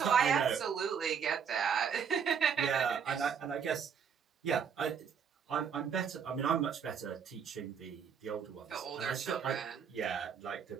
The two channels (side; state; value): left; quieter; 7.1 dB